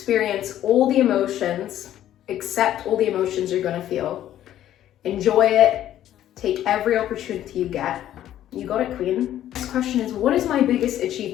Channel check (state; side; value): quieter; right; 12.1 dB